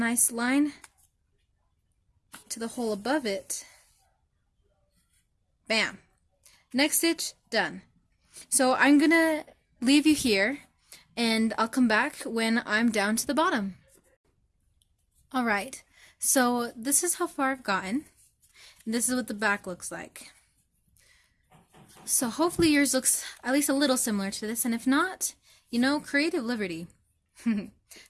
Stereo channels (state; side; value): identical; both; correlation 1.00